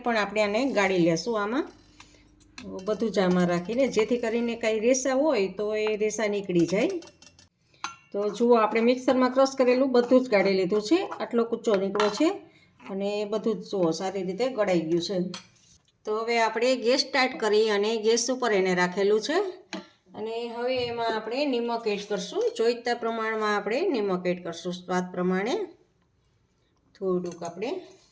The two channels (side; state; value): both; identical; correlation 1.00